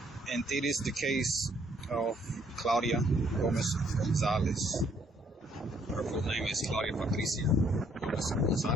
And it is the case of Claudia Gómez González. Her full name is Claudia Patricia Gómez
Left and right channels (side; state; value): both; normal; correlation 0.67